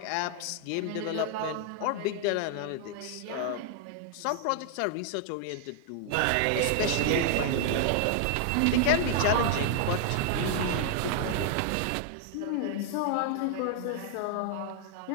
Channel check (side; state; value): both; different; correlation 0.00